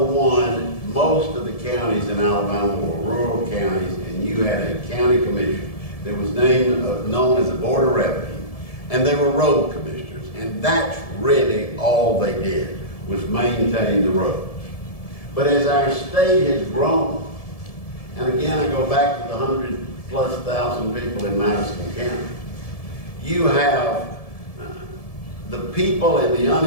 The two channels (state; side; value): late; right; 1.7 ms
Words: most of the counties in Alabama were rural counties, and you had a county commission that was known as the Board of Revenue, and they were road commissioners, and that's really all they did, was maintain the roads. But as our state has grown, and again I go back to the 100,000+ people in Madison County, you have the people in the